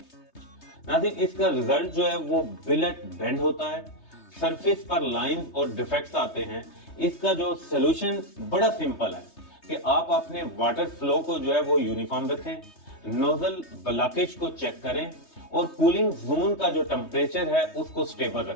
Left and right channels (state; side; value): late; right; 3.2 ms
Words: ناظرین، اس کا ریزلٹ جو ہے وہ بلٹ بینڈ ہوتا ہے، سرفیس پر لائنز اور ڈیفیکٹس آتے ہیں۔ اس کا جو سلوشن بڑا سمپل ہے کہ آپ اپنے واٹر فلو کو جو ہے وہ یونیفارم رکھیں، نوزل بلاکیج کو چیک کریں اور کولنگ زون کا جو ٹمپریچر ہے اس کو سٹیبل